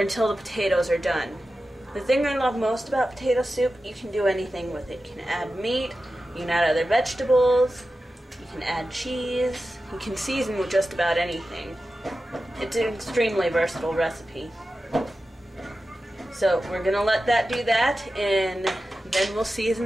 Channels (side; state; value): both; normal; correlation 0.93